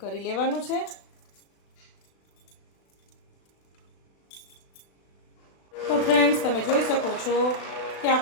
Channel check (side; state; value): right; late; 36 ms